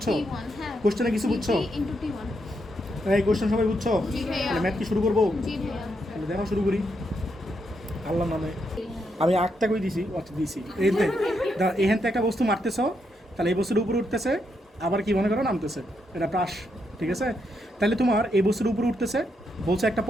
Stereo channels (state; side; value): normal; both; correlation 0.80